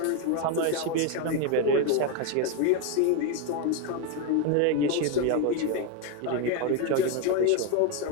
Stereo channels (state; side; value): different; both; correlation 0.02